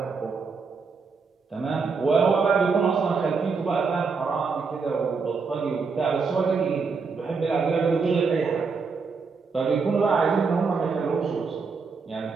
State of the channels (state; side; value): quieter; left; 4.9 dB